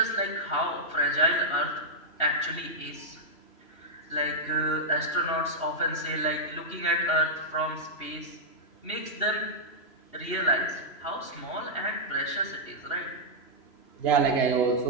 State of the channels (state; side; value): late; right; 3.0 ms